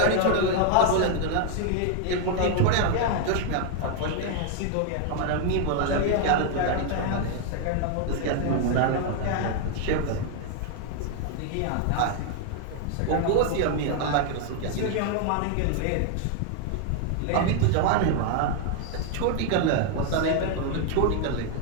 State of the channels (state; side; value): different; both; correlation 0.00